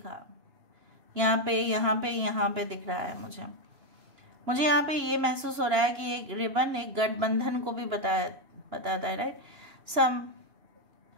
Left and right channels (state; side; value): late; left; 2.9 ms